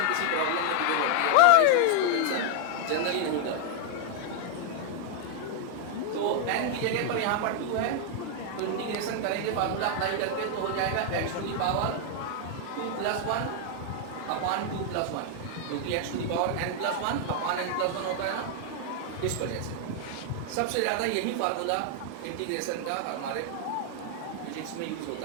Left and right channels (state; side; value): different; both; correlation 0.00